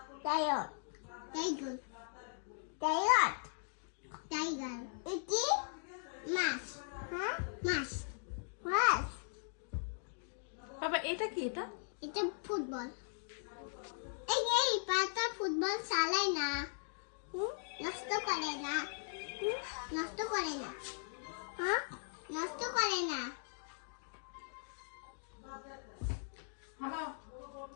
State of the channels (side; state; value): right; silent; digital silence